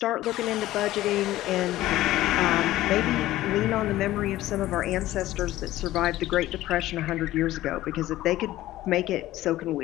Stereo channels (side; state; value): right; quieter; 15.5 dB